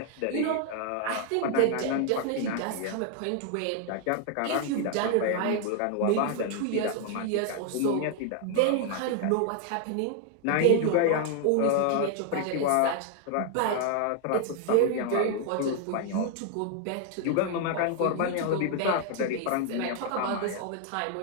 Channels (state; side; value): different; both; correlation 0.00